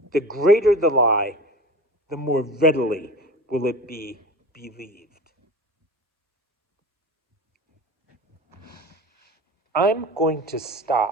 The greater the lie, the more readily will it be believed. I'm going to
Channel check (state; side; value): normal; both; correlation 0.35